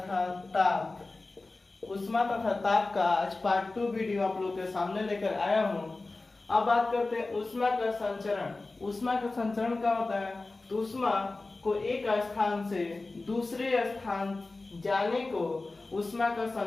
ताप। ऊष्मा तथा ताप का आज पार्ट 2 वीडियो आप लोग के सामने लेकर आया हूँ। अब बात करते हैं ऊष्मा का संचरण। ऊष्मा का संचरण क्या होता है? तो ऊष्मा को एक स्थान से दूसरे स्थान जाने को ऊष्मा का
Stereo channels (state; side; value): quieter; right; 3.3 dB